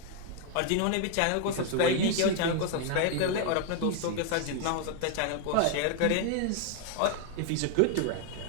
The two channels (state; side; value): different; both; correlation 0.00